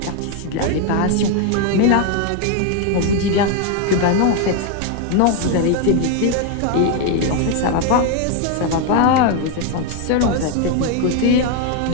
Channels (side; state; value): both; different; correlation 0.01